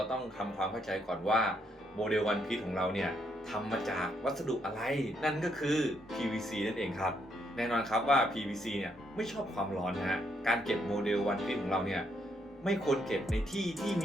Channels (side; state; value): both; normal; correlation 0.75